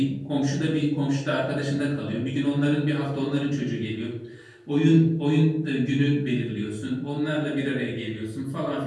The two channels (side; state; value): both; identical; correlation 1.00